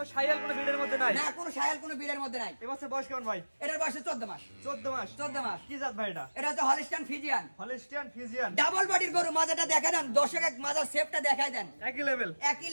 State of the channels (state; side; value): inverted; both; correlation -1.00